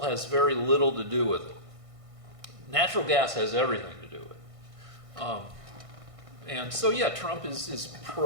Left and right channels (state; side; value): late; left; 1.6 ms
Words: has very little to do with it. Natural gas has everything to do with it. And so, yeah, Trump is